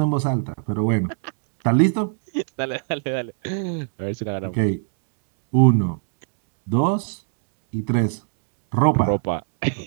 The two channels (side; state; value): left; silent; digital silence